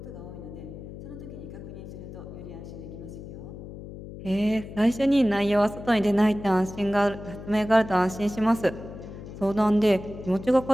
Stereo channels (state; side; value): noise; left; hum, 12 dB below the sound